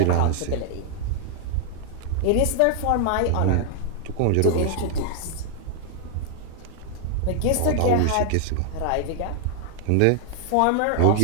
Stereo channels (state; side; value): different; both; correlation 0.00